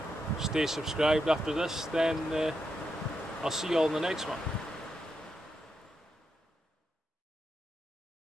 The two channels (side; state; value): both; normal; correlation 0.84